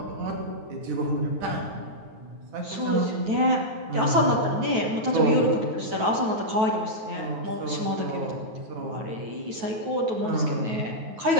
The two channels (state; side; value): late; left; 9.1 ms